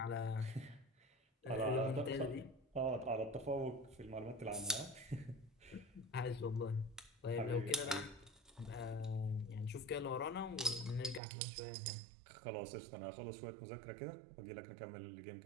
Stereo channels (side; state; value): left; drops out; at 11.2 s